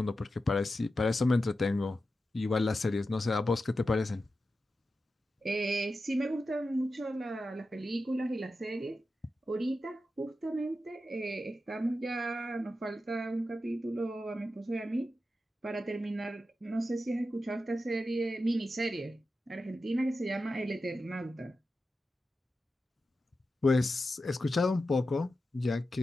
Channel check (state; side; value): normal; both; correlation 0.91